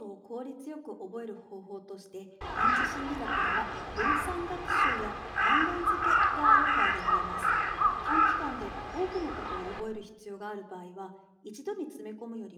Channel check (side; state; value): both; identical; correlation 1.00